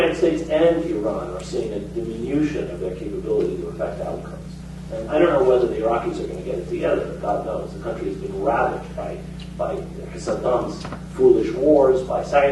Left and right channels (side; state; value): both; identical; correlation 1.00